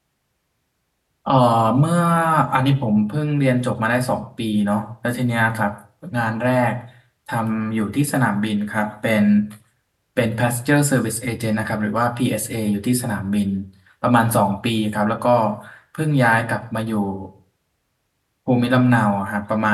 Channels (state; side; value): identical; both; correlation 1.00